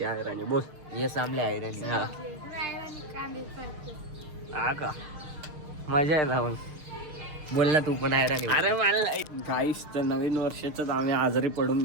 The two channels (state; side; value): late; left; 6.6 ms